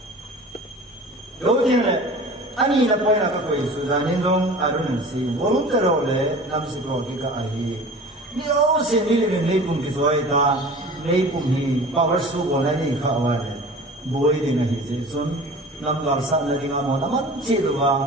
đầu tiên là anh ấy là phải là cái gì sự ra nên trong ai đó nên gì volunteer là năm sự có cái ai nếu xin đi lên lấy cùng cái số ta lấy cùng thì power số của nó đi khá là bồi đi ngay thì son nam gar sa na ringa mo naman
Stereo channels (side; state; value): both; normal; correlation 0.40